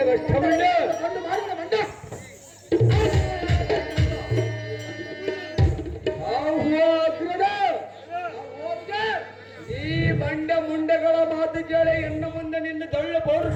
ಈ ಬಂಡ ಮುಂಡೆಗಳ ಮಾತು ಕೇಳಿ ಇನ್ನು ಮುಂದೆ ನಿನ್ನ ದೊಳ್ಳೆ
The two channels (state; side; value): identical; both; correlation 1.00